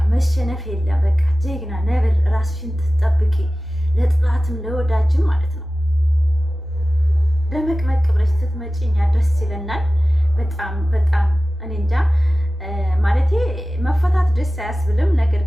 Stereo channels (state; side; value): normal; both; correlation 0.96